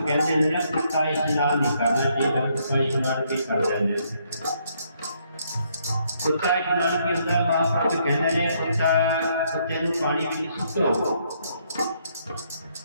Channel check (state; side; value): inverted; both; correlation -0.71